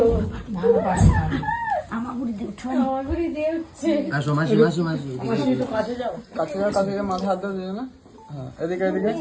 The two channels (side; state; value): both; identical; correlation 1.00